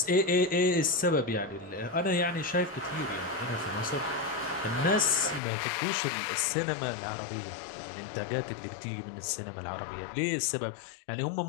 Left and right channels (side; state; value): right; drops out; at 5.4 s